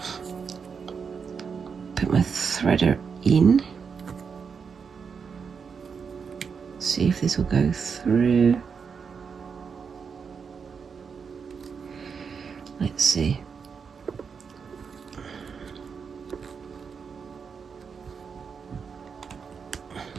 put my threader in, see if this will go through. Let's see.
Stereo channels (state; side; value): quieter; left; 6.0 dB